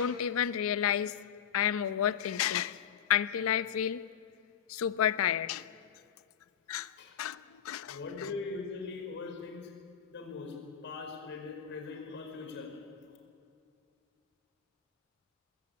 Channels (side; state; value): right; quieter; 8.9 dB